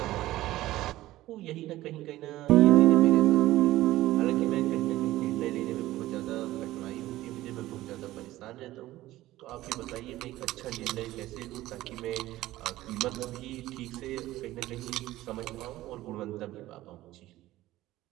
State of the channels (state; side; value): quieter; left; 16.1 dB